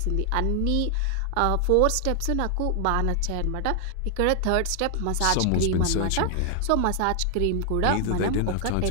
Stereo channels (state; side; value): different; both; correlation 0.00